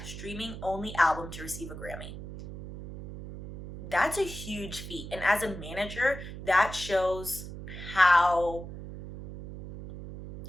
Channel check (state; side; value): noise; right; hum, 11 dB below the sound